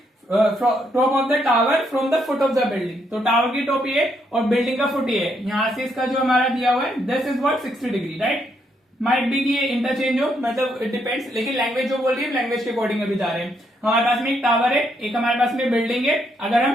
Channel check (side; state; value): both; normal; correlation 0.75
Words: top of the tower from the foot of the building। तो टावर की टॉप ये और बिल्डिंग का फुट ये है। यहां से इसका जो हमारा दिया हुआ है, this is what 60 degree, right. Might be कि ये इंटरचेंज हो, मतलब इट डिपेंड्स, लेकिन लैंग्वेज जो बोल रही है लैंग्वेज के अकॉर्डिंग अभी जा रहे हैं। हमारे पास में एक टावर है, एक हमारे पास में बिल्डिंग है। अगर